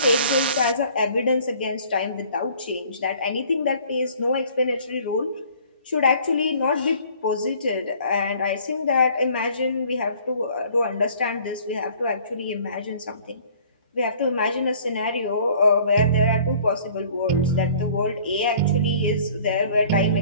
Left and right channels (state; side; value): inverted; both; correlation -0.53